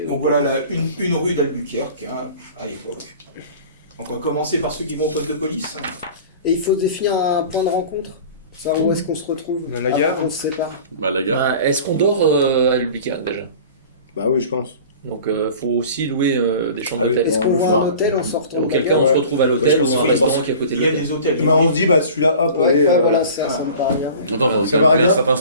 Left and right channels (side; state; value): both; inverted; correlation -0.41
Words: Donc voilà une rue d'Albuquerque, hein, à l'époque. Donc on va commencer par ceux qui vont au poste de police. Et il faut définir un point de rencontre. Ça, où est-ce qu'on se retrouve? Dans la gare. Après, on se sépare. Bah la gare. Ah, est-ce qu'on dort à Albuquerque déjà? Bah oui, je pense. Donc faut aussi louer des chambres Ah oui, d'hôtel. Est-ce qu'on le voit soir. un hôtel en sortant? Auquel de cas la on gare? se retrouve à Ouais, je l'hôtel pense ou qu'il à un faut restaurant d'abord- qui est à côté Il de y a l'hôtel. des hôtels. Bah, on se dit, bah celui-là, hop, Ouais, allez. bah, voilà, ça me paraît bien. Attends, faut Ça va, calculer un regarde. certain